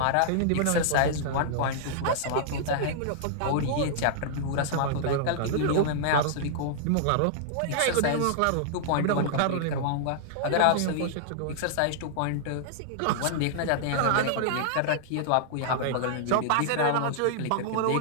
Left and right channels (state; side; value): different; both; correlation -0.01